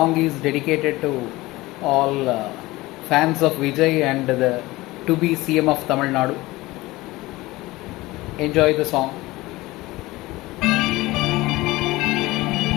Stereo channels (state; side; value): quieter; right; 19.7 dB